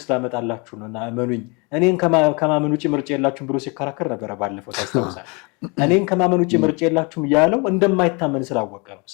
ላመጣላችሁ ነው እና እመኑኝ፣ እኔን ከማመን ውጭ ምርጫ የላችሁም ብሎ ሲከራከር ነበረ ባለፈው ታስታውሳል። እኔን ከማመን ውጭ ምርጫ የላችሁም ያለው እንደማይታመን ስላወቀ ነው፣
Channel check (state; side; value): quieter; right; 30.4 dB